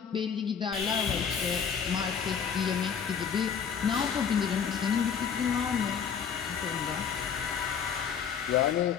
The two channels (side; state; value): right; quieter; 7.1 dB